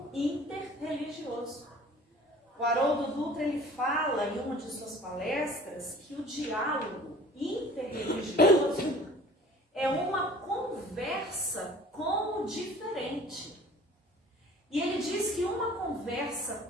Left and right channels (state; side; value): normal; both; correlation 0.46